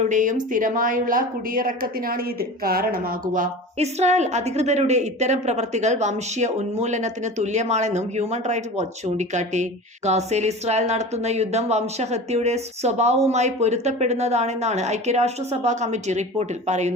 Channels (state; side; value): normal; both; correlation 0.34